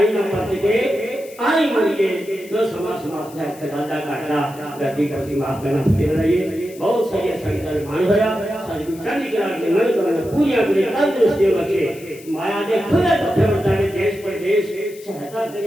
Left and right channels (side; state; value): left; noise; hiss, 21 dB below the sound